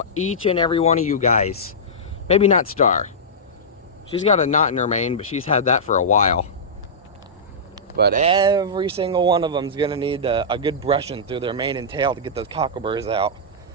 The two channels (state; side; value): normal; both; correlation -0.14